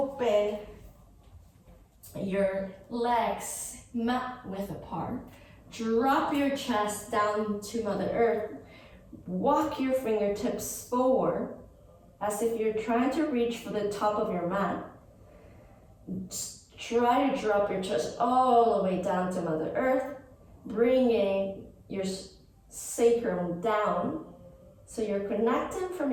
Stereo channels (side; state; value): both; identical; correlation 1.00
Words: your legs mat width apart. Drop your chest down to Mother Earth. Walk your fingertips forward as if you're trying to reach for the top of your mat. Just try to drop your chest all the way down to Mother Earth, bringing your sacrum down. So you're connecting from